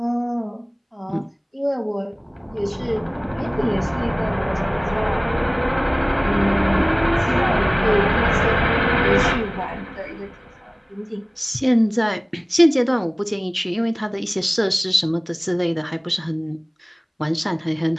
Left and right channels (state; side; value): identical; both; correlation 1.00